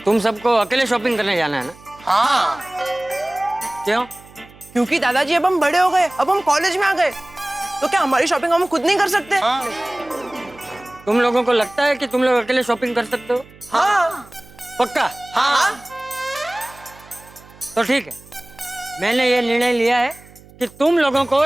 तुम सबको अकेले शॉपिंग करने जाना है ना? हाँ। क्यों? क्योंकि दादाजी अब हम बड़े हो गए, अब हम कॉलेज में आ गए, तो क्या हमारी शॉपिंग हम खुद नहीं कर सकते? हाँ। तुम लोगों को लगता है कि तुम लोग अकेले शॉपिंग कर सकते हो? हाँ। पक्का? हाँ। तो ठीक है, मैंने ये निर्णय लिया है कि तुम लोगों को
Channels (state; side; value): noise; right; hum, 23 dB below the sound